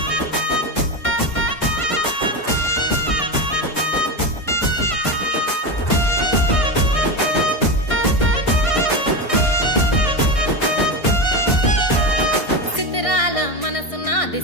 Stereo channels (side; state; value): right; late; 1.6 ms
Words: సిద్ధిరాల మనసు నాది